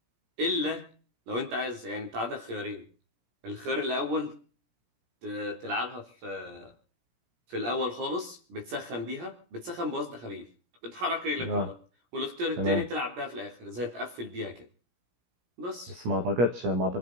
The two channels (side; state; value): left; late; 17 ms